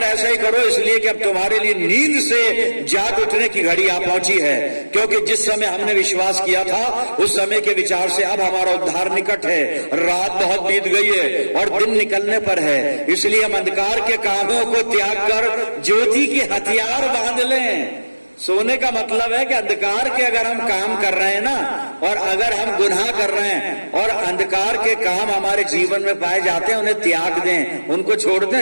ऐसा ही करो, इसलिए कि अब तुम्हारे लिए नींद से जाग उठने की घड़ी आ पहुंची है, क्योंकि जिस समय हमने विश्वास किया था उस समय के विचार से अब हमारा उद्धार निकट है। रात बहुत बीत गई है और दिन निकलने पर है, इसलिए हम अंधकार के कामों को त्याग कर ज्योति के हथियार बांध लें। सोने का मतलब है कि अंधकार के अगर हम काम कर रहे हैं ना, और अगर हम गुनाह कर रहे हैं और अंधकार के काम हमारे जीवन में पाए जाते हैं, उन्हें त्याग दें, उनको छोड़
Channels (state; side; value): inverted; both; correlation -1.00